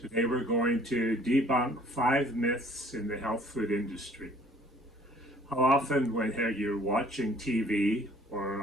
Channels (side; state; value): both; normal; correlation 0.56